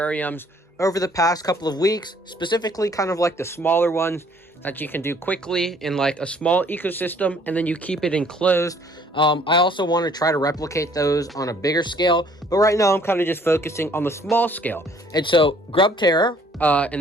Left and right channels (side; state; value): both; normal; correlation 0.59